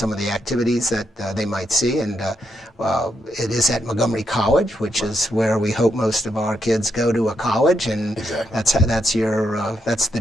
of the activities that they might see. And it is at Montgomery College, which is where we hope most of our kids go to a college, and that's the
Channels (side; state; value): both; normal; correlation 0.80